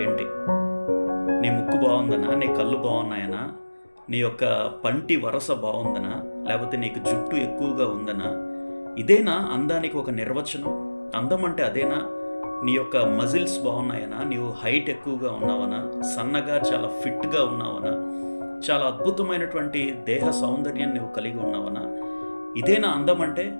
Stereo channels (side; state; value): both; inverted; correlation -1.00